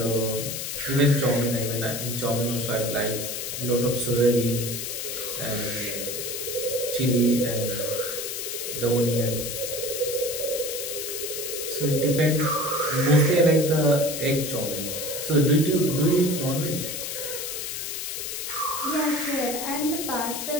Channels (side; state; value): left; noise; hiss, 4 dB below the sound